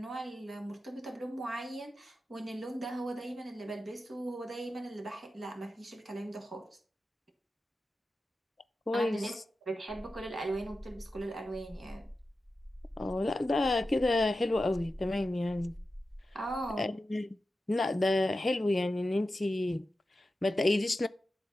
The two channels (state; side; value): normal; both; correlation 0.92